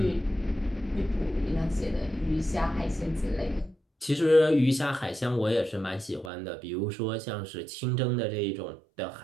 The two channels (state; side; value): drops out; left; at 6.3 s